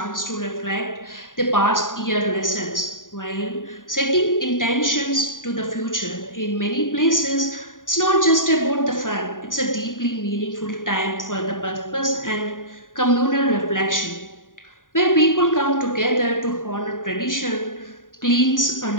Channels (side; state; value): right; late; 0.89 ms